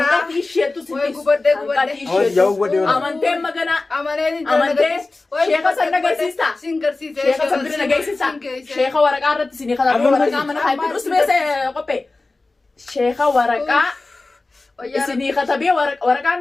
تيشيتو Jauh buat dia. أمانتين مجانا أمانتين شيخة سنة جيسيستا شيخة سنة جيسيستا شيخة ورقة رت سني خلاص ورقة من هاي بس بس قبي شيخة ورقة سني خطبي ورقة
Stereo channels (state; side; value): quieter; right; 3.4 dB